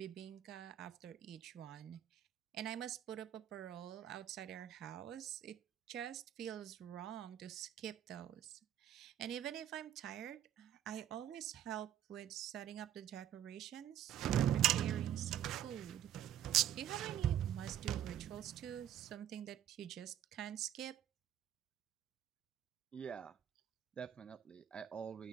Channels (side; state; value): left; quieter; 10.9 dB